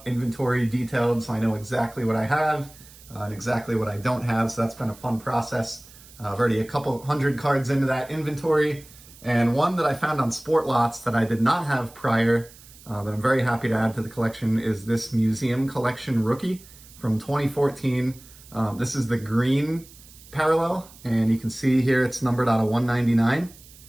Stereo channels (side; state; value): right; noise; hiss, 22 dB below the sound